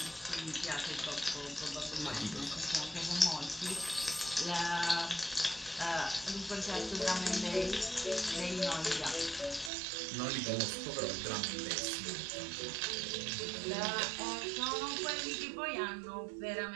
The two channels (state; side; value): drops out; left; at 9.7 s